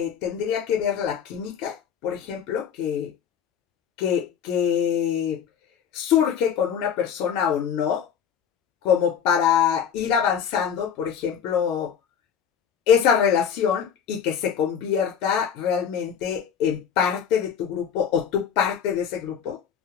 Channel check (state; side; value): quieter; right; 8.0 dB